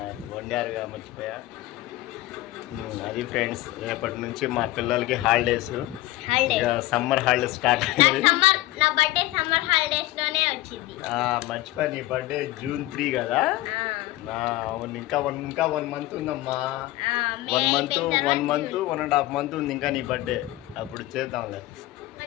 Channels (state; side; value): quieter; right; 17.4 dB